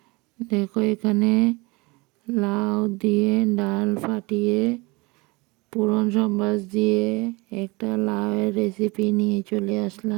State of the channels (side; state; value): left; quieter; 25.2 dB